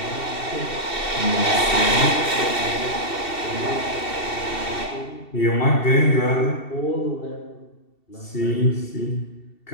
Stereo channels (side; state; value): right; late; 2.7 ms